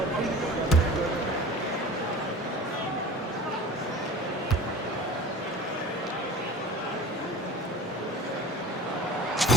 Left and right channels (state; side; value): normal; both; correlation 0.39